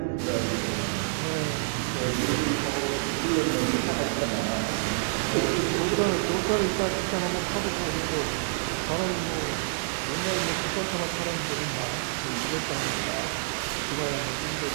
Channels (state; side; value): silent; left; digital silence